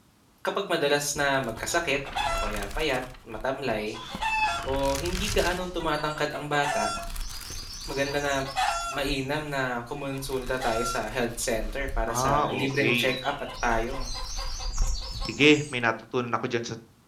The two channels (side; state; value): both; identical; correlation 1.00